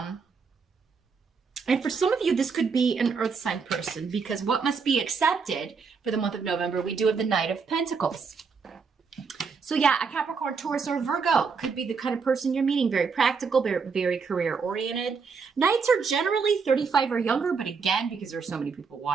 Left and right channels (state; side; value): quieter; left; 5.3 dB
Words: And for some of you, this could be an earth sign person, because what must be accepted for the month of November, we do have the Knight of Pentacles. So yeah, a Capricorn, Taurus, or Virgo could be the kind of person you're meeting. Very practical, very career oriented. Knights are generally 35 or younger, but again, because there's so many people